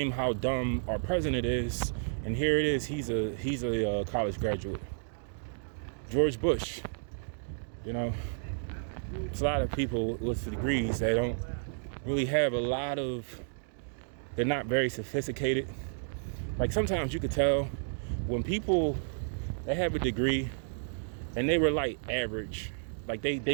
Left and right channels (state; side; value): silent; left; digital silence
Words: how dumb our president is, and here it is, he's a college graduate. George Bush, there's a lot of people with degrees that don't really have they're not very sophisticated. Like sometimes you could tell when people, they have a degree and they were like average, like